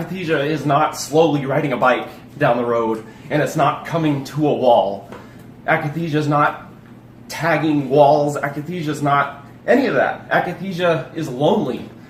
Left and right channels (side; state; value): both; identical; correlation 1.00